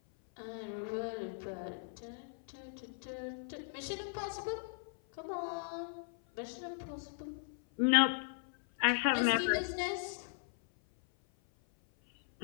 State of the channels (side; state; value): right; silent; 53 dB below the other